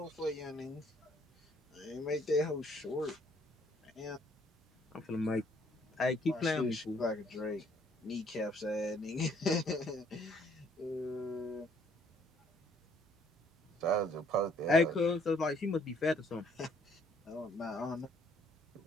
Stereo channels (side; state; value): both; normal; correlation 0.64